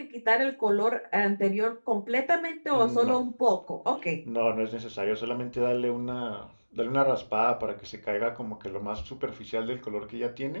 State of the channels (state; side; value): inverted; both; correlation -1.00